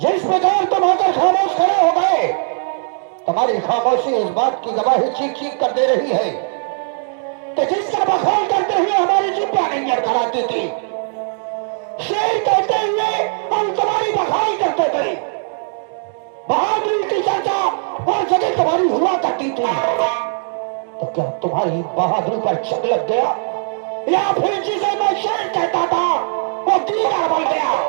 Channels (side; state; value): left; silent; 67 dB below the other